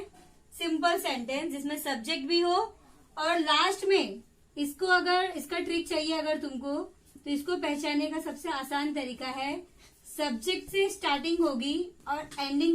सिंपल सेंटेंस जिसमें सब्जेक्ट भी हो और लास्ट में इसको, अगर इसका ट्रिक चाहिए अगर तुमको, तो इसको पहचानने का सबसे आसान तरीका है, सब्जेक्ट से स्टार्टिंग होगी और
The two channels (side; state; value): both; identical; correlation 1.00